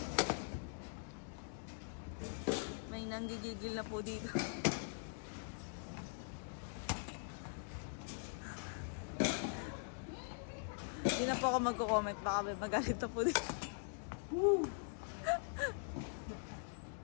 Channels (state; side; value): silent; right; digital silence